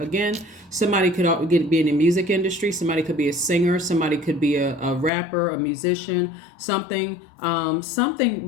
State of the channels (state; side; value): drops out; right; at 5.1 s